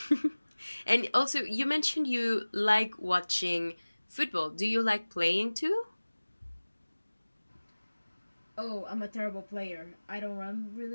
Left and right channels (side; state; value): both; inverted; correlation -1.00